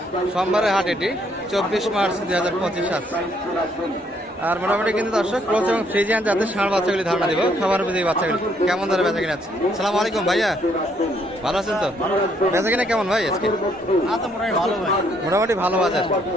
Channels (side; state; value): both; normal; correlation 0.69